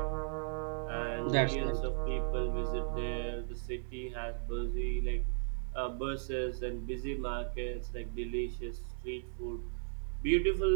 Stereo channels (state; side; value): silent; left; 54 dB below the other